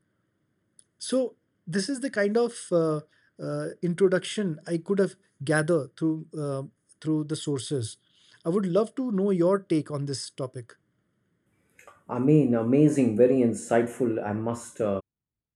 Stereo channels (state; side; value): identical; both; correlation 1.00